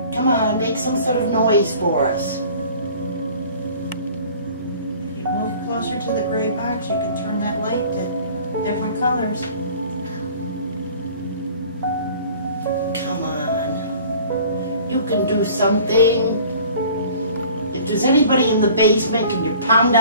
Come on, make some sort of noise for us. If you move closer to the gray box, you can turn that light to different colors. Come on. You can do something. If there's anybody in the basement, can you pound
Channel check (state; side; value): inverted; both; correlation -0.48